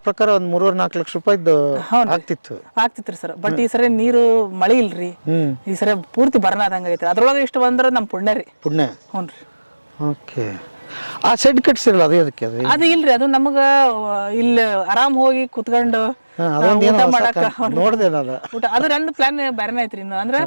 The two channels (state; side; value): inverted; both; correlation -1.00